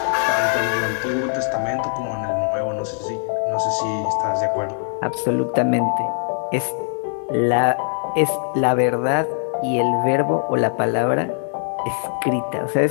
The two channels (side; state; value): right; silent; 60 dB below the other